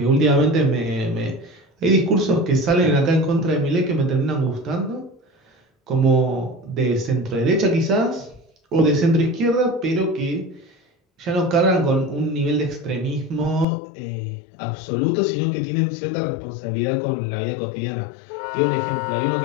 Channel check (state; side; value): drops out; right; at 13.7 s